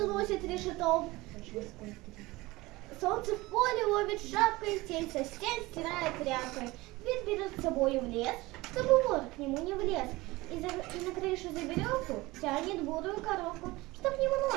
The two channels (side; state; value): left; quieter; 20.7 dB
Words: носит решетом. Солнце в поле ловит шапкой, тень со стен стирает тряпкой. Дверь берет с собой в лес, чтобы вор к нему не влез. И на крышу за веревку тянет бурую коровку, чтоб